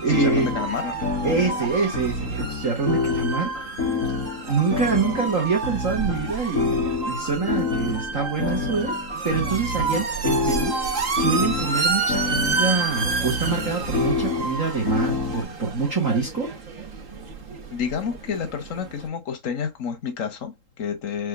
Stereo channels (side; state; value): right; late; 3.8 ms